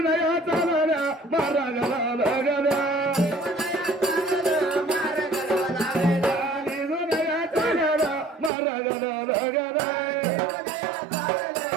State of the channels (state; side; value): drops out; left; at 8.5 s